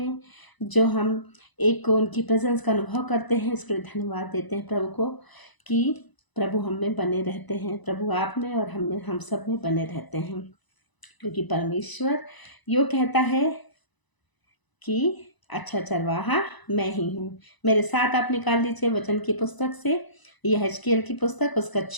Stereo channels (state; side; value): late; right; 1.0 ms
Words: जो हम एक उनकी प्रेजेंस का अनुभव करते हैं, इसके लिए धन्यवाद देते हैं प्रभु को कि प्रभु हम में बने रहते हैं, प्रभु आप में और हम में, हम सब में बने रहते हैं। क्योंकि परमेश्वर यो कहता है कि अच्छा चरवाहा मैं ही हूँ। मेरे साथ आप निकाल लीजिए वचन की पुस्तक से, यह हिजकिय्याह की पुस्तक, उसका